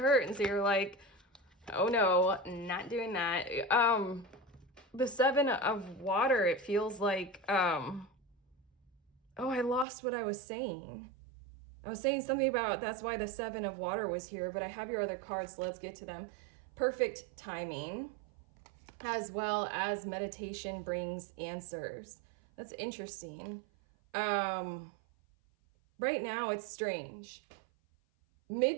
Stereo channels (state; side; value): drops out; left; at 9.9 s